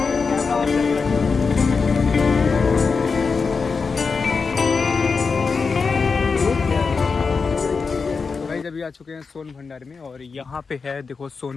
अभी आ चुके हैं सोन भंडार में, और यहाँ पे है देखो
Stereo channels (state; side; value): quieter; right; 4.9 dB